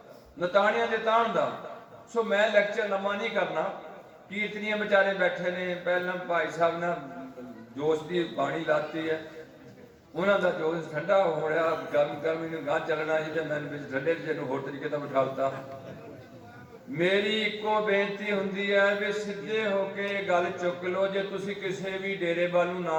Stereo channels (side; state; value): both; identical; correlation 1.00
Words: ਨਤਾਣਿਆਂ ਦੇ ਤਾਣ ਦਾ। ਸੋ ਮੈਂ ਲੈਕਚਰ ਲੰਮਾ ਨਹੀਂ ਕਰਨਾ। ਕੀਰਤਨੀਆਂ ਵਿਚਾਰੇ ਬੈਠੇ ਨੇ, ਪਹਿਲਾਂ ਭਾਈ ਸਾਹਿਬ ਨੇ ਜੋਸ਼ ਦੀ ਬਾਣੀ ਲਾਤੀ ਹੈ, ਉਹਨਾਂ ਦਾ ਜੋਸ਼ ਠੰਡਾ ਹੋ ਰਿਹਾ, ਗਰਮੀ ਨੂੰ ਗਾਂ ਚੱਲਣਾ ਜੀ, ਤੇ ਮੈਨੂੰ ਵਿੱਚ ਠੰਡੇ ਚ ਨੂੰ ਹੋਰ ਤਰੀਕੇ ਦਾ ਬਿਠਾ ਦਿੱਤਾ। ਮੇਰੀ ਇੱਕੋ ਬੇਨਤੀ ਹੁੰਦੀ ਹੈ ਵੀ ਸਿੱਧੇ ਹੋ ਕੇ ਗੱਲ ਚੁੱਕ ਲਓ। ਜੇ ਤੁਸੀਂ ਕਿਸੇ ਵੀ ਡੇਰੇ ਵੱਲ ਨੂੰ